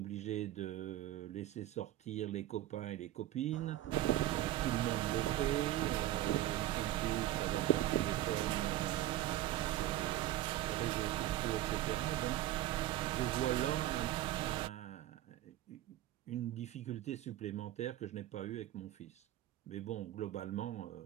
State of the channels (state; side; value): quieter; left; 13.9 dB